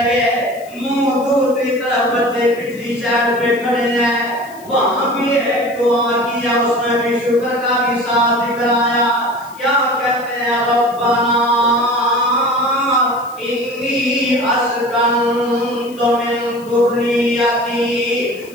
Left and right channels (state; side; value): noise; left; hiss, 23 dB below the sound